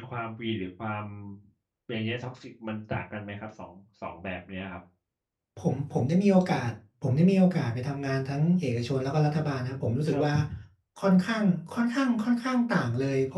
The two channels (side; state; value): both; identical; correlation 1.00